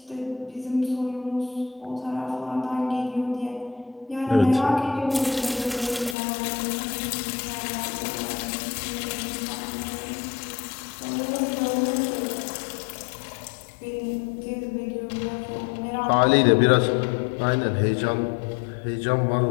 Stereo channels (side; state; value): right; drops out; at 6.2 s